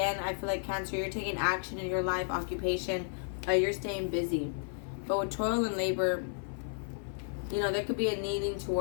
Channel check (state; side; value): silent; right; 56 dB below the other